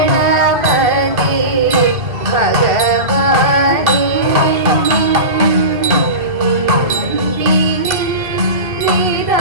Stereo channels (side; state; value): left; late; 2.6 ms